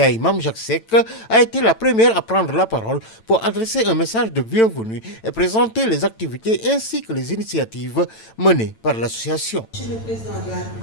Mame Jacques Seck, a été la première à prendre la parole pour adresser un message de bienvenue et présenter les activités ainsi que les initiatives menées par l'association. Monsieur le président de la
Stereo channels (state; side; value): late; right; 9.0 ms